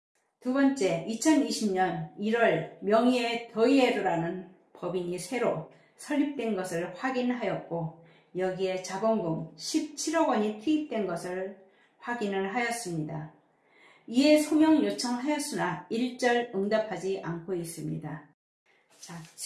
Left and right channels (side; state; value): both; identical; correlation 1.00